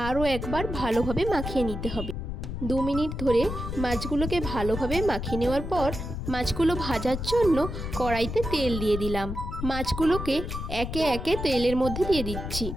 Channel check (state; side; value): noise; left; rumble, 5 dB below the sound